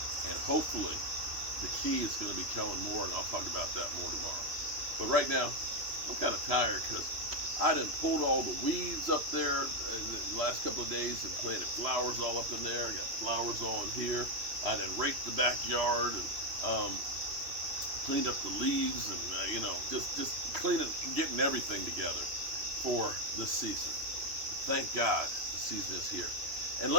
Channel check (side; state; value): left; late; 3.1 ms